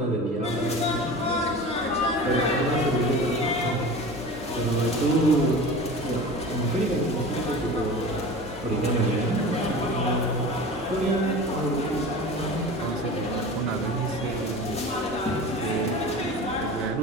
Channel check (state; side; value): normal; both; correlation 0.35